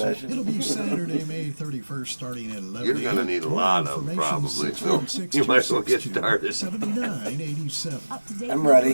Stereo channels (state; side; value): inverted; both; correlation -1.00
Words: It'll be Saturday, May 31st, starting at 11 You're gonna need a More lot of 'em, information, probably, so 616 you might as well get 262 started. 7987. I'm